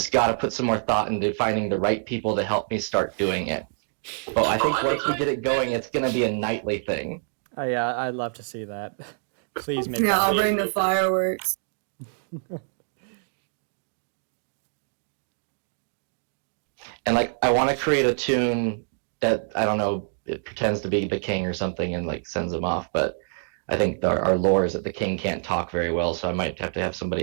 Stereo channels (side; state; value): left; silent; 61 dB below the other